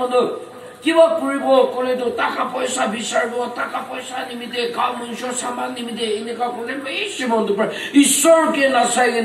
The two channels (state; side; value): identical; both; correlation 1.00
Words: কিবা কৰিব কলে তো টাকা পয়সা বিচাৰিব টাকা পয়সা নিমিদে কাম মনুষ্য সামান নিমিদে এনেকা কলে বেশি মন্দ পায় ঈশ্বৰকে নাচাই